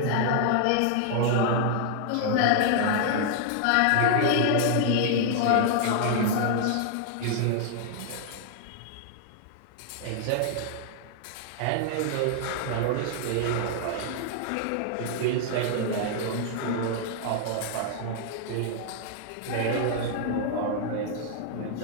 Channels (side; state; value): both; different; correlation -0.01